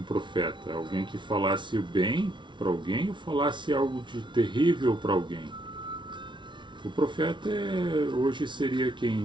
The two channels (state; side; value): late; left; 0.24 ms